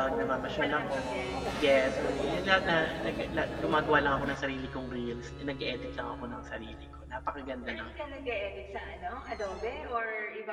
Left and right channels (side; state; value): both; identical; correlation 1.00